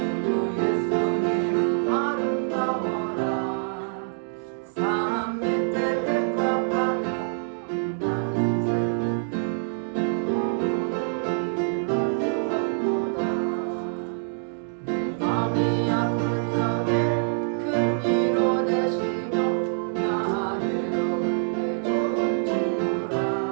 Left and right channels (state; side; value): silent; left; 61 dB below the other